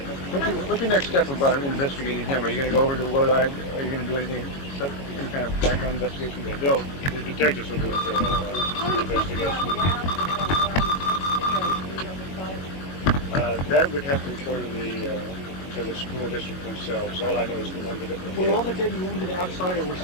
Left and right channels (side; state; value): right; late; 22 ms